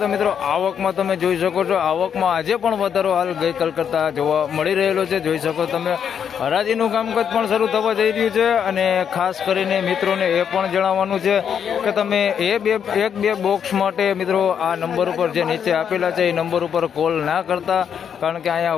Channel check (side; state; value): right; quieter; 7.9 dB